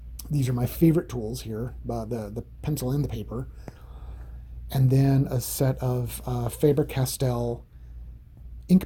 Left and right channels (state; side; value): identical; both; correlation 1.00